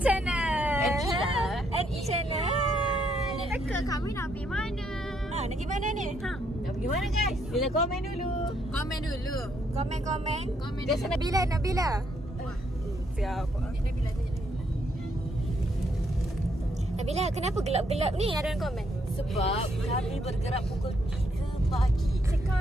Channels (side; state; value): both; normal; correlation 0.73